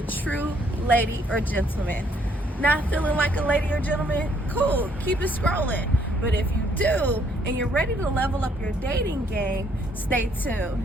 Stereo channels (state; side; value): normal; both; correlation 0.67